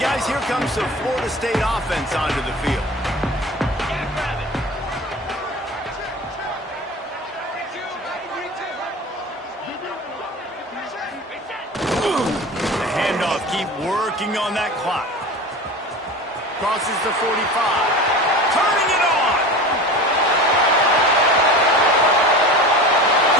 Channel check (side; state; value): both; normal; correlation 0.34